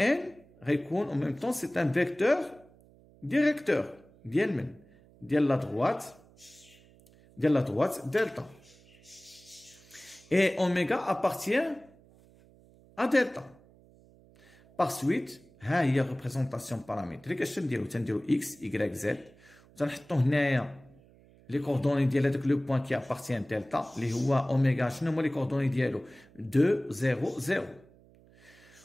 récogne en même temps c'est un vecteur directeur de la droite delta. Et oméga appartient à delta. Par suite ها هي ريبريزونطاسيون بارامتريك اش تنديرو اكس y z وتنحطو هنايا لي كوردوني ديال هذاك لو بوين كي ابارتيان دلتا اللي هو اوميغا شنو هما لي كوردوني ديالو 2 0 0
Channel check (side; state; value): right; noise; hum, 27 dB below the sound